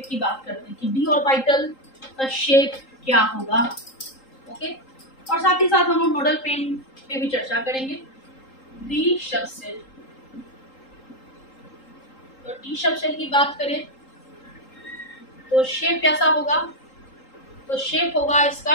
की बात करते हैं कि डी ऑर्बिटल का शेप क्या होगा, ओके। और साथ ही साथ हम लोग नोडल प्लेन पे भी चर्चा करेंगे। डी सब सेल, तो डी सब सेल की बात करें तो शेप कैसा होगा, तो शेप होगा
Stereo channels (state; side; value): late; right; 3.8 ms